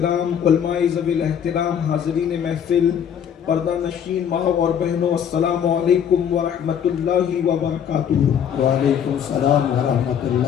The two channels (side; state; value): right; quieter; 8.5 dB